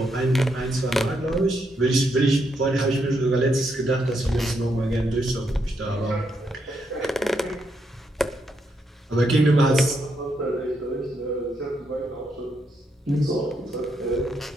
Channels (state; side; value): normal; both; correlation 0.78